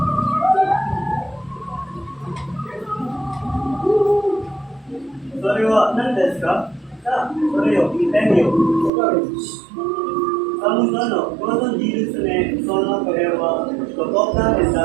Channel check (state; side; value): drops out; left; at 8.9 s